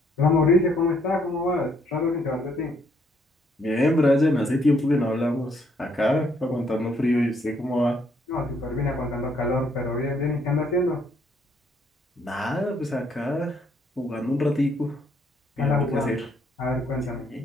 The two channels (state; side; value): normal; both; correlation 0.69